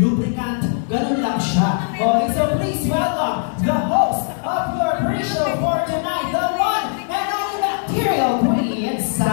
ganun lang siya. Okay, so please welcome the host of your pre-show for tonight, the one and only Bacterial Queen,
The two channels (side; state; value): right; silent; digital silence